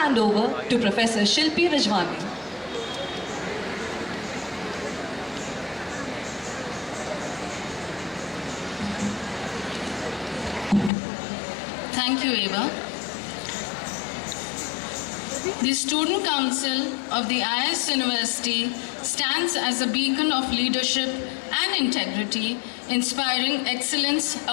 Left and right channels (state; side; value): drops out; right; at 10.9 s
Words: over to Professor Shilpi Rajwani. Thank you, Eva. The Student Council of the IS University stands as a beacon of leadership and integrity, inspiring excellence